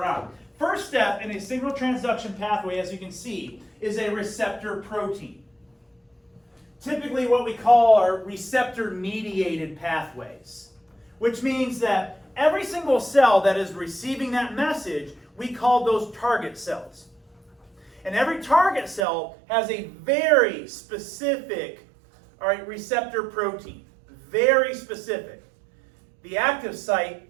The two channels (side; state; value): left; drops out; at 19.1 s